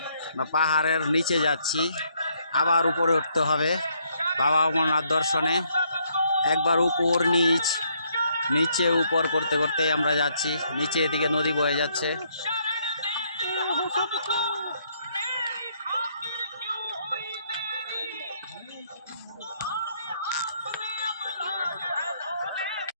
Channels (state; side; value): inverted; both; correlation -0.71